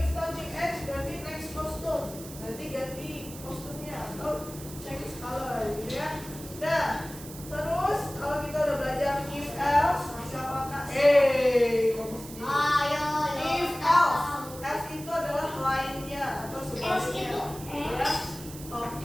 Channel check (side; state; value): right; noise; hiss, 15 dB below the sound